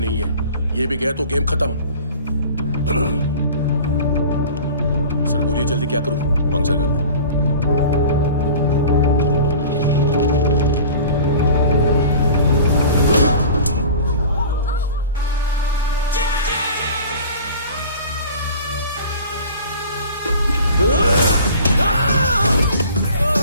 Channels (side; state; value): both; inverted; correlation -0.42